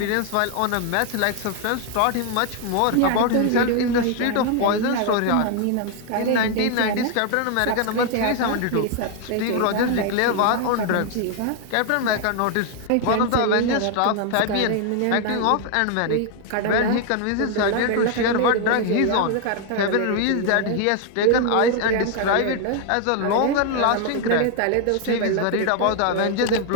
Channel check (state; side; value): different; both; correlation 0.00